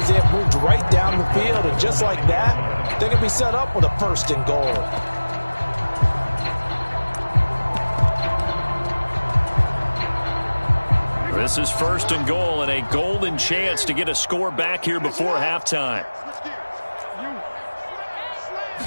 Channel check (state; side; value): inverted; both; correlation -1.00